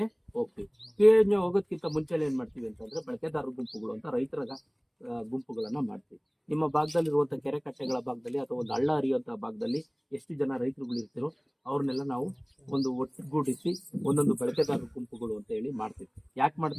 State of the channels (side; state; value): both; identical; correlation 1.00